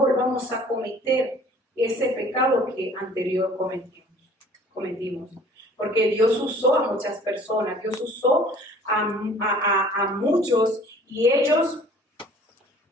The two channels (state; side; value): normal; both; correlation 0.51